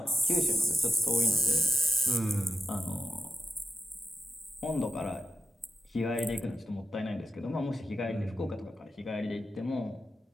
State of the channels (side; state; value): both; normal; correlation 0.89